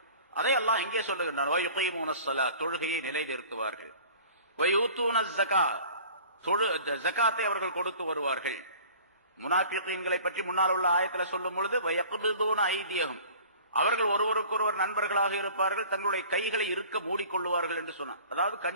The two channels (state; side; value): inverted; both; correlation -0.46